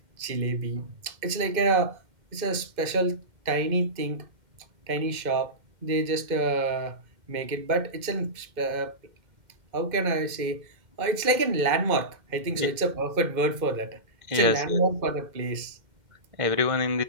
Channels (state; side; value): late; left; 2.1 ms